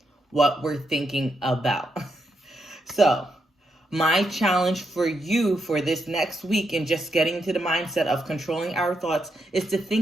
what we're thinking about. So my challenge for you for this next week, and just getting to the mindset of controlling our thoughts, is to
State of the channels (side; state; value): both; normal; correlation 0.81